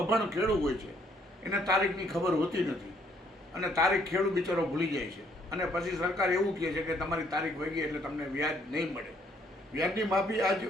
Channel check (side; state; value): both; normal; correlation 0.66